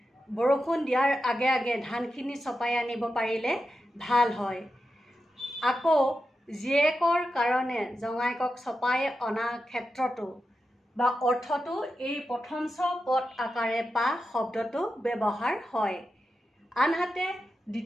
বৰষুণ দিয়াৰ আগে আগে ধানখিনি ছপাই আনিব পাৰিলে ভাল হয়। আকৌ জীয়েকৰ কাৰণে জঙাইকক ছপাই অনা ক্ষেত্ৰতো বা অৰ্থটো এই প্ৰথম ছ পদ আকাৰে পা শব্দটো ব্যৱহাৰ হয়। আনহাতে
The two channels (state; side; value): normal; both; correlation 0.89